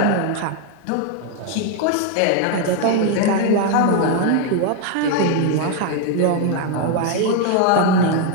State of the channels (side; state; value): both; different; correlation 0.01